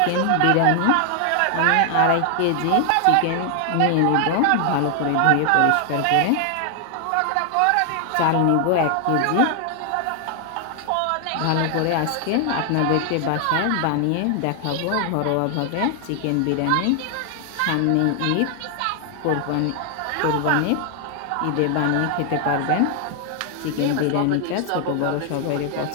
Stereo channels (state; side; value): different; both; correlation 0.00